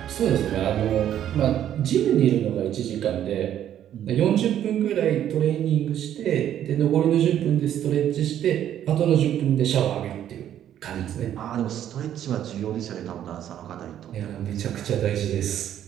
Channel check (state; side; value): quieter; left; 10.8 dB